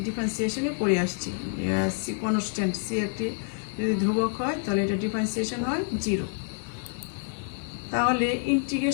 পড়ে আসছি। সি কনস্ট্যান্ট, সি একটি যদি ধ্রুবক হয় তাহলে এটা ডিফারেন্সিয়েশন হয় 0। তাহলে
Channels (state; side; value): silent; right; digital silence